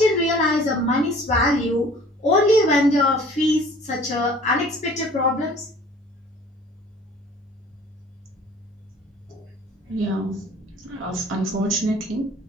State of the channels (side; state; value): both; normal; correlation 0.50